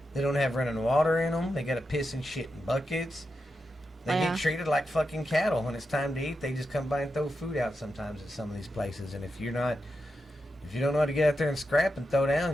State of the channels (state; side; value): normal; both; correlation 0.88